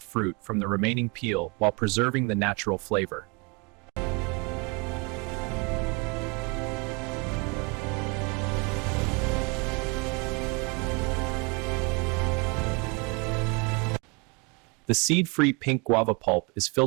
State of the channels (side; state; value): left; quieter; 30.1 dB